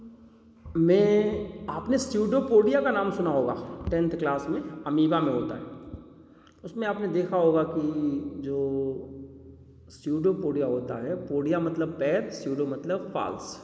में आपने स्यूडोपोडिया का नाम सुना होगा, 10th क्लास में अमीबा में होता है। उसमें आपने देखा होगा कि जो स्यूडोपोडिया होता है, पोडिया मतलब पैर, स्यूडो मतलब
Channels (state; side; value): identical; both; correlation 1.00